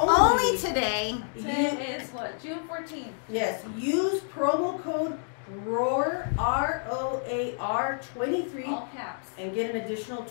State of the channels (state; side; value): silent; right; digital silence